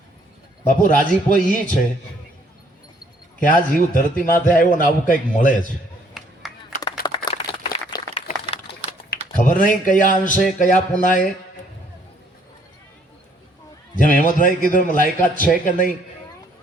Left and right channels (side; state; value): both; normal; correlation 0.64